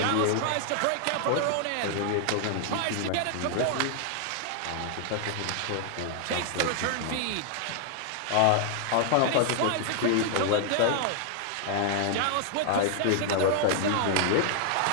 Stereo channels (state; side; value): different; both; correlation 0.00